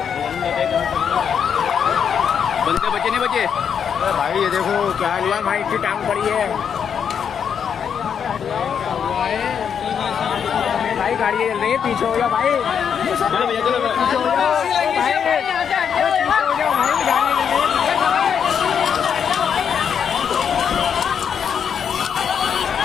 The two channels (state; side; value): quieter; right; 7.5 dB